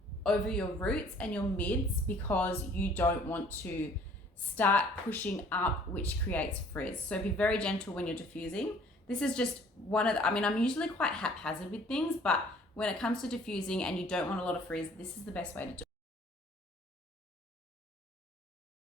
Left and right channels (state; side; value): normal; both; correlation 0.55